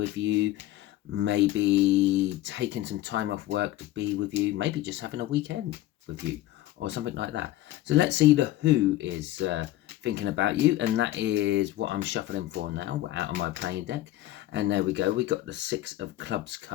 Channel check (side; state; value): right; quieter; 14.9 dB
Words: you, maybe taking some time off work to be with you, maybe just having a weekend with you or something like that. So let's see the who is thinking about you, and that is what I'm shuffling for now. We're out of my playing deck, and there we go. We got the Six of Clubs